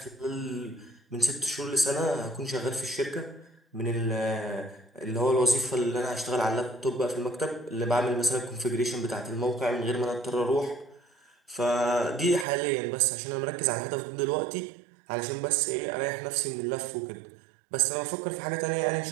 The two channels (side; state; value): left; drops out; at 12.5 s